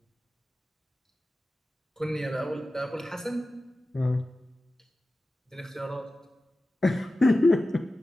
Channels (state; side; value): normal; both; correlation 0.95